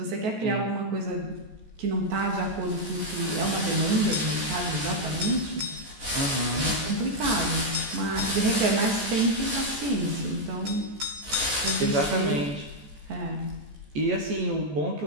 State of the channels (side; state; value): left; late; 14 ms